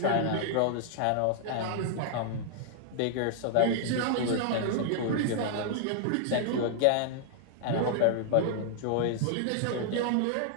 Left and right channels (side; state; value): both; different; correlation -0.01